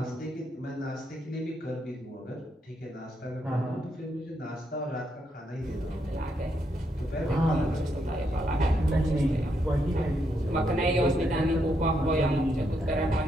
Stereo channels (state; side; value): normal; both; correlation 0.78